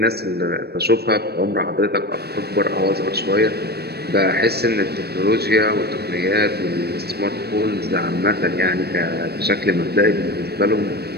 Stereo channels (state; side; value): late; left; 0.47 ms